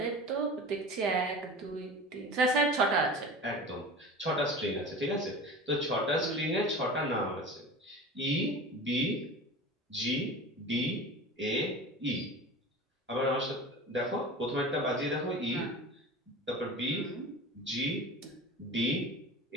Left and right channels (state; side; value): normal; both; correlation 0.35